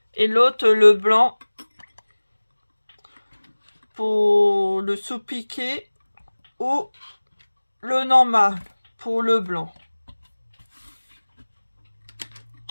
Et l'autre, le blanc, pour le sous-piqué, ou le normal pour le blanc.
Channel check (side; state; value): both; inverted; correlation -1.00